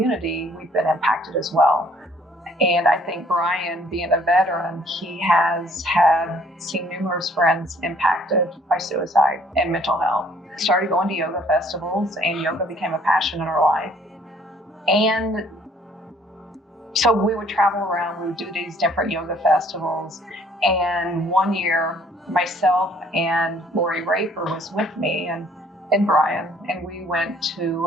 we've been impacted as well. And I think Brian, being a veteran, he has seen numerous friends impacted by suicide and mental health. Started going to yoga festivals, and yoga became a passion in our life. And so we would travel around, we would do these different yoga festivals. And one year, myself and Lori Raper was with me and Brian, and we went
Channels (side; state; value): both; normal; correlation 0.59